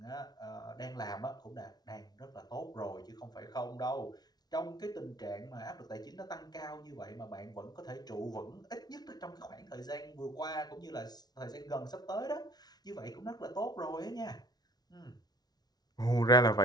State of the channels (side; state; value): right; late; 0.19 ms